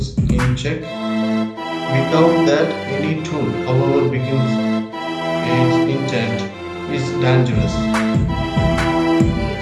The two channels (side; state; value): both; identical; correlation 1.00